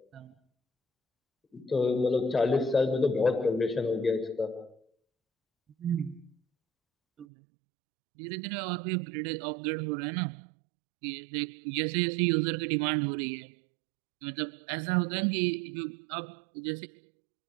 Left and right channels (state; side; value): drops out; left; at 7.2 s